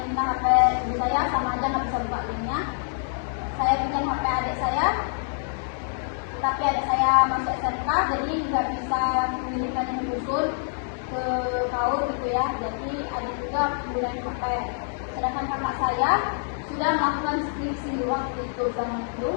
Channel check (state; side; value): silent; right; digital silence